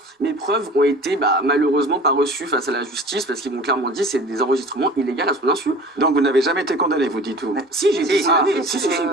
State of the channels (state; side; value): normal; both; correlation 0.41